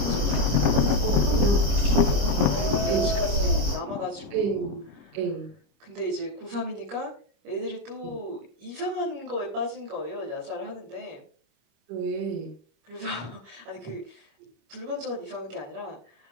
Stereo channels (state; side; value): late; left; 25 ms